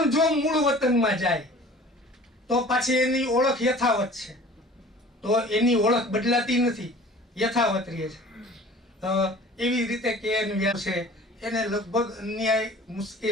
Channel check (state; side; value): normal; both; correlation 0.46